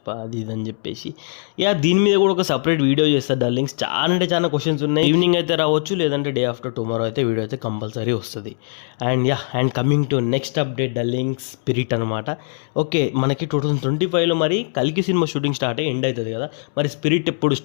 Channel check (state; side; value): silent; right; 65 dB below the other